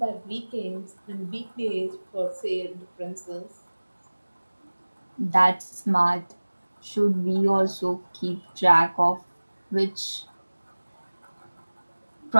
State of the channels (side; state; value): both; inverted; correlation -1.00